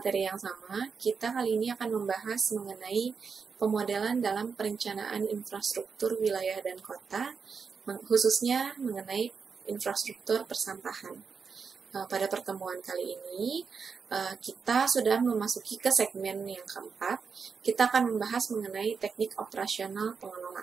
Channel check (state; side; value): quieter; left; 5.6 dB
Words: yang sama, kita kali ini akan membahas mengenai pemodelan dalam perencanaan infrastruktur wilayah dan kota, khususnya mengenai infrastruktur persampahan. Pada pertemuan kali ini, kita sudah memasuki ke segmen yang keempat. Kita akan membahas mengenai teknik operasional